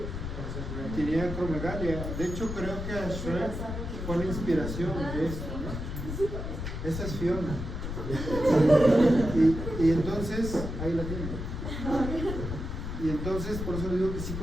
tenía acromegalia. De hecho, creo que a Shrek fue la inspiración de esto, ¿no? Esa es Fiona. Y entonces, ahí la tiene. Y entonces, por eso digo que sí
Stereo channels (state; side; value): noise; left; rumble, 5 dB below the sound